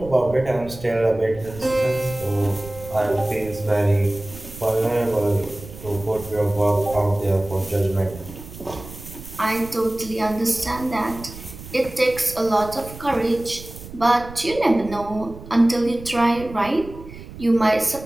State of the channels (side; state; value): right; noise; rumble, 15 dB below the sound